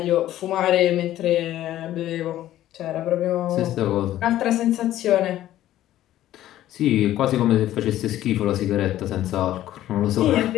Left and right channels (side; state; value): right; quieter; 13.4 dB